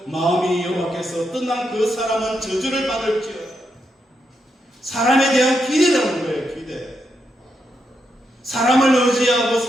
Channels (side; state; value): both; normal; correlation 0.82